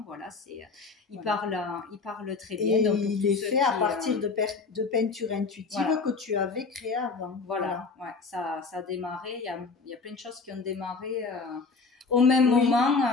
Voilà, il parle très bien. Et donc, il est fait à partir de peinture intuitive que tu avais créée avant. Voilà. Ouais, ça a démarré. Il y a plein de choses qui ont démarré au même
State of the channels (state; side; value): quieter; right; 4.4 dB